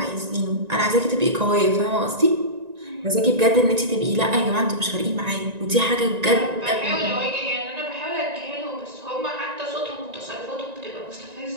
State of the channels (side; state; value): left; late; 1.9 ms